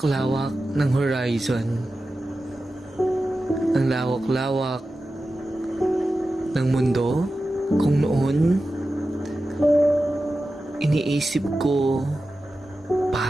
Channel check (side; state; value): both; normal; correlation 0.93